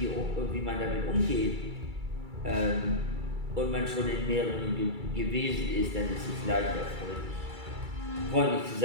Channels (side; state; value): left; late; 2.3 ms